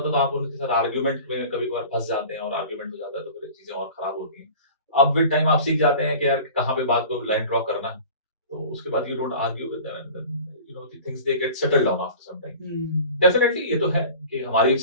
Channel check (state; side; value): inverted; both; correlation -0.40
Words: तो आप उनके साथ आर्ग्यूमेंट में कभी कभार फंस जाते हैं और आर्ग्यूमेंट हो जाता है तो फिर चीजें और खराब होती हैं। अब विद टाइम आप सीख जाते हैं कि यार कहाँ पे बात को लाइन ड्रॉ करना, तो उसके बाद you don't argue with them and you know the things they get settled down after some time. Definitely ये तो है कि हमारी